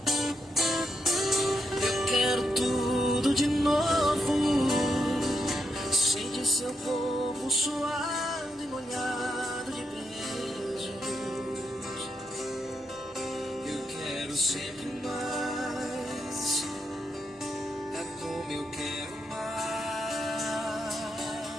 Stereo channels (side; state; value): both; normal; correlation 0.81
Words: Eu quero tudo de novo. Sente seu corpo suado e molhado de beijos. Eu quero sempre mais. É como eu quero mais.